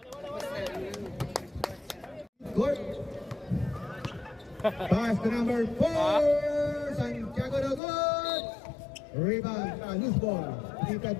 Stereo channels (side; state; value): right; drops out; at 7.8 s